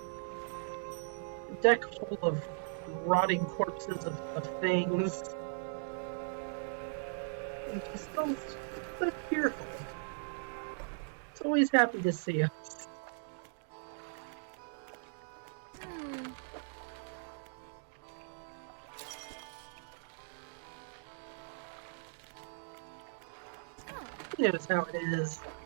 deck full of rotting corpses of things. And she's still so cheerful. It's always happy to see us. He knows how it is.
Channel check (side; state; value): left; silent; digital silence